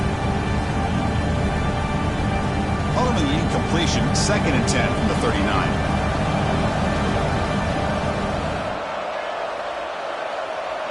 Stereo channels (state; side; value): identical; both; correlation 1.00